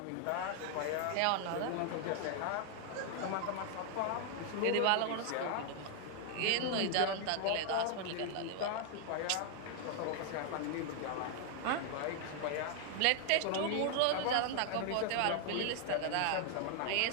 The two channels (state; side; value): different; both; correlation 0.00